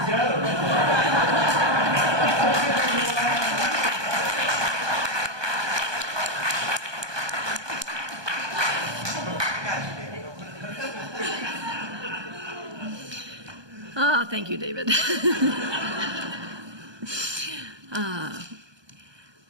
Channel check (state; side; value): late; left; 1.2 ms